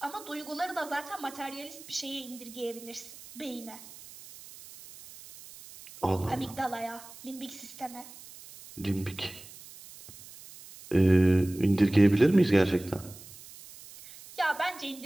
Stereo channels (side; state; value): right; noise; hiss, 18 dB below the sound